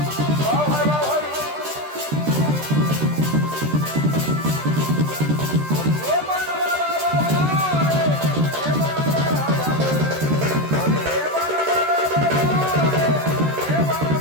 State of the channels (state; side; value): late; left; 13 ms